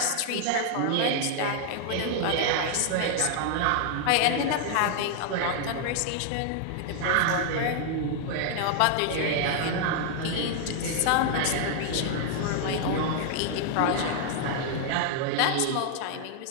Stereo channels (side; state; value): both; different; correlation 0.00